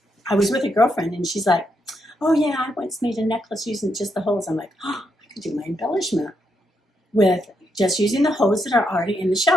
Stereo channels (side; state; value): both; normal; correlation 0.80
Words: I was with a girlfriend and she's like, oh yeah, I once made a necklace using just the holes. I'm like, oh, I could do my embellishment with just using the hose that are already in the